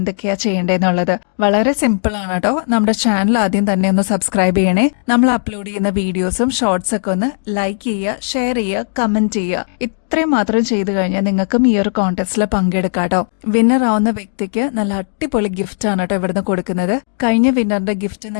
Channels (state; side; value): silent; right; digital silence